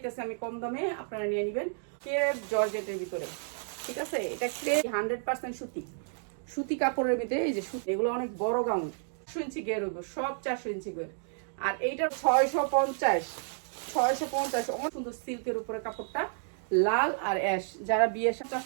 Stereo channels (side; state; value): left; silent; digital silence